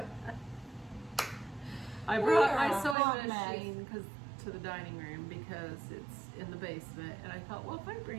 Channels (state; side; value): drops out; left; at 3.0 s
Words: I We brought are my a hot sewing mess. machine to the dining room because it's in the basement, and I thought, well, if I